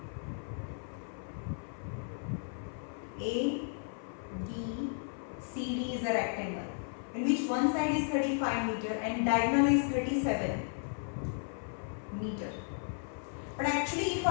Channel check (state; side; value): silent; right; 55 dB below the other